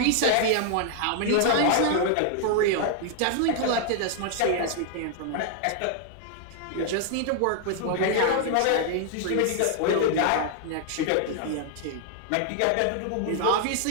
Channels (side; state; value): both; different; correlation 0.00